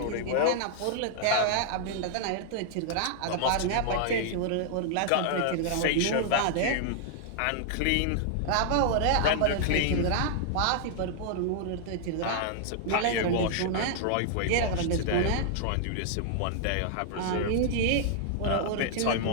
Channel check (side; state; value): both; different; correlation -0.01